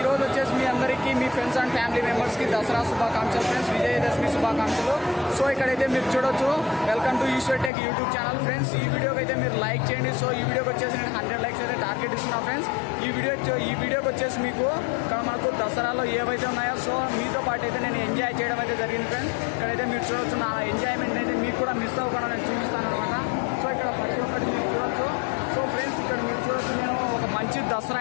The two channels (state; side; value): drops out; right; at 7.7 s